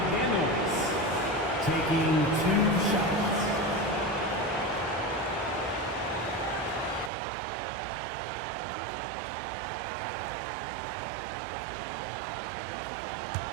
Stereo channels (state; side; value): drops out; left; at 7.1 s